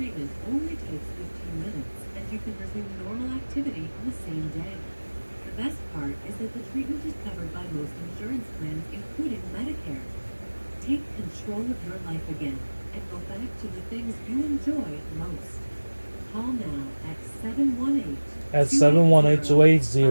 only takes 15 minutes, and you can resume normal activity on the same day. The best part is that the treatment is covered by most insurance plans, including Medicare. Take control of your life again and go back to the things you enjoy most. Call now at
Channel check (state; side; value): inverted; both; correlation -1.00